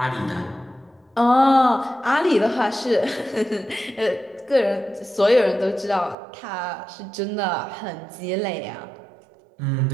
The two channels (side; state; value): left; drops out; at 6.2 s